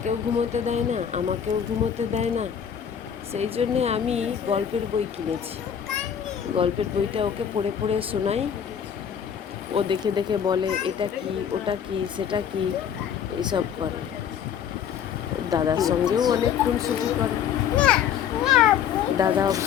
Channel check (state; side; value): quieter; right; 8.4 dB